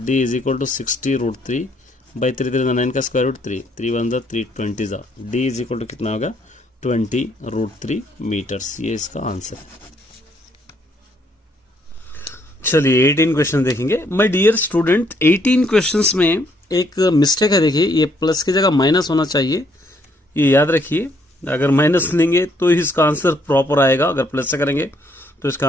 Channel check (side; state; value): both; normal; correlation 0.69